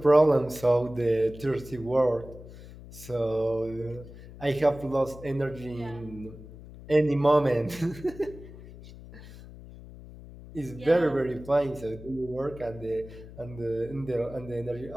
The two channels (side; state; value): left; noise; hum, 16 dB below the sound